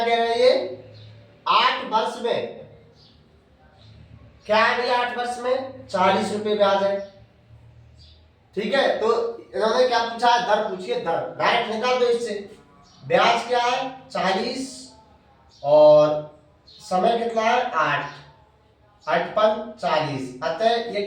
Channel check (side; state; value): both; identical; correlation 1.00